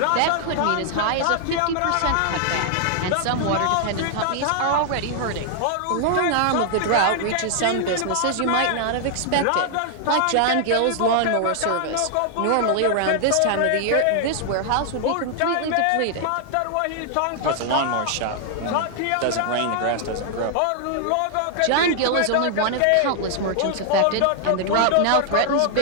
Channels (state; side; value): different; both; correlation 0.00